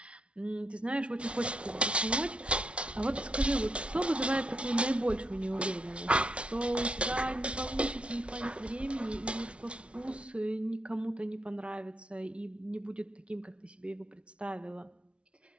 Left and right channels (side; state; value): left; late; 0.060 ms